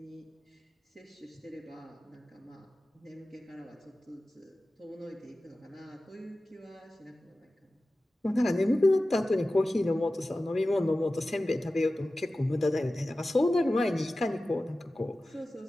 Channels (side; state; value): both; normal; correlation 0.95